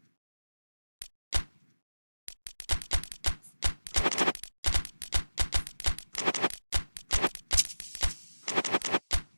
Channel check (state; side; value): inverted; both; correlation -1.00